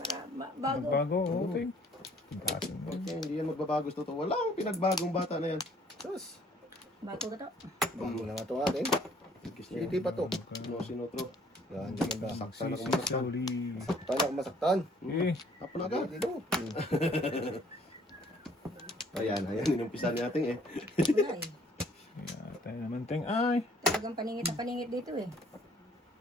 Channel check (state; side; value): normal; both; correlation 0.59